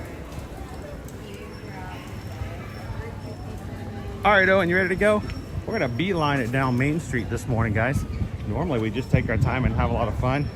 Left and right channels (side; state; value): both; identical; correlation 1.00